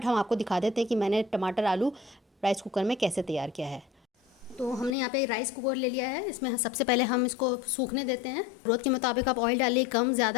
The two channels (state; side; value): drops out; right; at 5.0 s